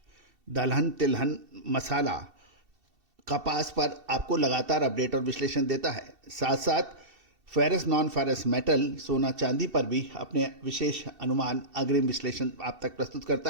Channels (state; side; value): late; left; 2.7 ms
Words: दलहन, तिलहन, मसाला, कपास पर आपको लगातार अपडेट और विश्लेषण देता है। साथ साथ फेरस, नॉन फेरस मेटल, सोना चांदी पर भी अपने विशेष अनुमान, अग्रिम विश्लेषण आप तक प्रस्तुत